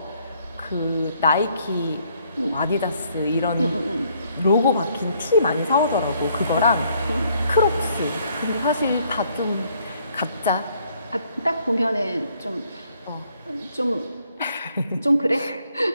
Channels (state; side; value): inverted; both; correlation -0.67